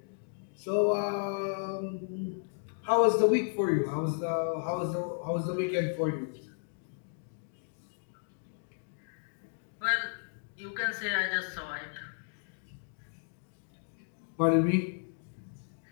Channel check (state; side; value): silent; right; digital silence